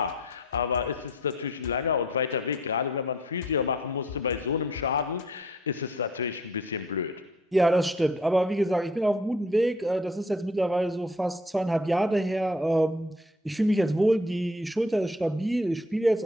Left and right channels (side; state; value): both; normal; correlation 0.57